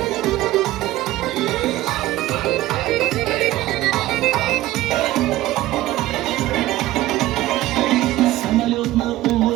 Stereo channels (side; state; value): left; quieter; 16.2 dB